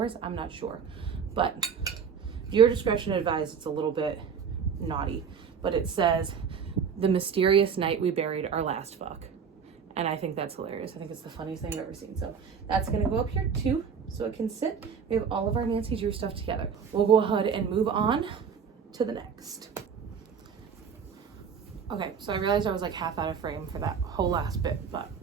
I'm not sure, but your discretion advised. It's a little bit naughty, but it says, "The mysterious night we buried our last fuck." And I think that's hilarious. I think it's the funniest thing I've ever seen. So that's gonna go up here too, so it can sit. We have all of our Nancy Drew stuff together. We'll go ahead and move on to the next. Okay, so I realized I was like half out of frame for that whole last bit, but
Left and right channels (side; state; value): left; quieter; 6.6 dB